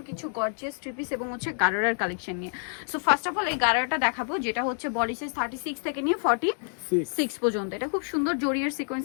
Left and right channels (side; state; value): right; silent; 60 dB below the other